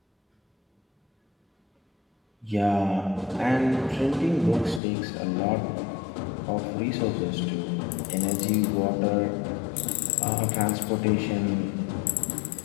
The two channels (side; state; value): right; drops out; at 4.8 s